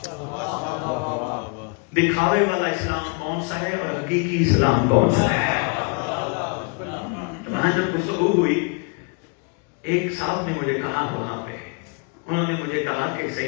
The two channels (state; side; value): quieter; right; 35.4 dB